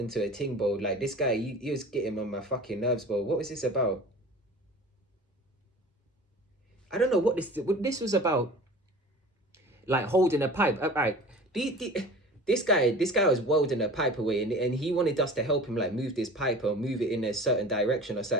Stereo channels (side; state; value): both; normal; correlation 0.40